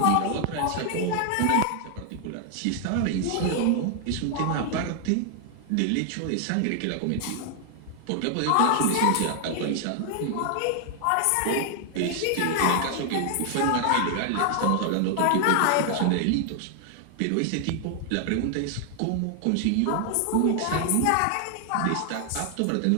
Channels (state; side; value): different; both; correlation 0.00